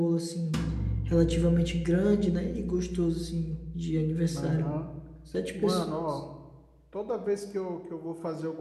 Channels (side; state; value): both; identical; correlation 1.00